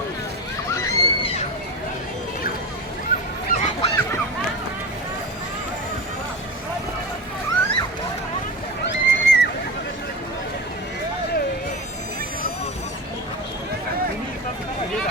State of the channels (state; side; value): normal; both; correlation 0.26